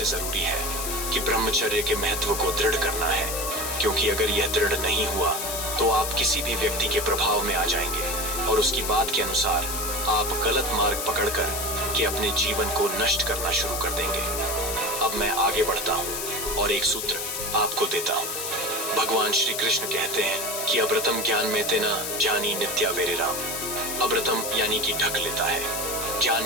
जरूरी है कि ब्रह्मचर्य के महत्व को दृढ़ करना है, क्योंकि अगर यह दृढ़ नहीं हुआ तो आप किसी भी व्यक्ति के प्रभाव में आ जाएंगे और उसकी बात के अनुसार आप गलत मार्ग पकड़कर के अपने जीवन को नष्ट करना शुरू कर देंगे। अब मैं आगे बढ़ता हूँ और एक सूत्र आपको देता हूँ। भगवान श्री कृष्ण कहते हैं कि अब्रतम ज्ञान में तेना जानी नित्या वेरे राम। अब्रतम यानी कि ढक लेता है, ज्ञान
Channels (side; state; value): left; noise; hiss, 3 dB below the sound